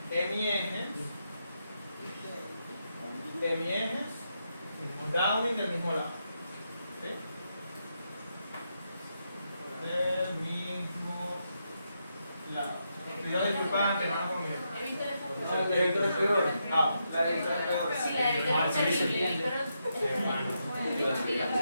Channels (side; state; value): both; inverted; correlation -0.83